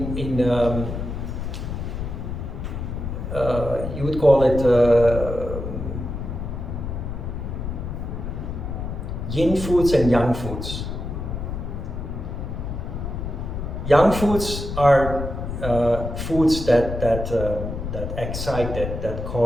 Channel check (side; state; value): left; noise; rumble, 5 dB below the sound